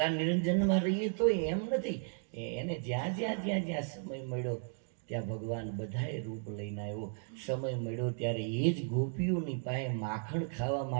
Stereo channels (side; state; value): left; silent; 55 dB below the other